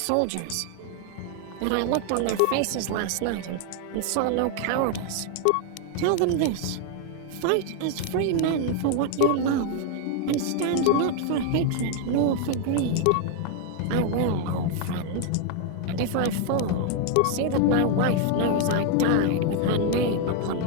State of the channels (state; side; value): different; both; correlation 0.00